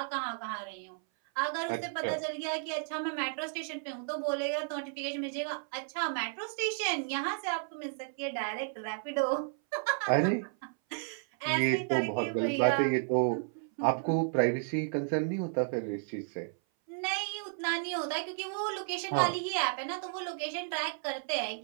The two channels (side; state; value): left; silent; 56 dB below the other